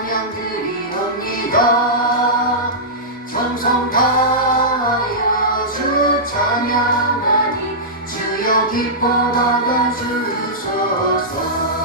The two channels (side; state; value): both; normal; correlation -0.14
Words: 드리옵니다 정성 다하여 주 찬양하니 주여 기뻐 받아주소서